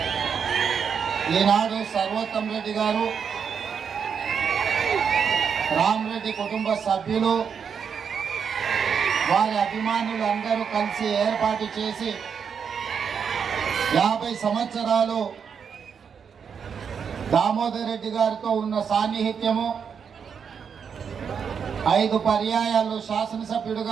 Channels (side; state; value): left; quieter; 6.8 dB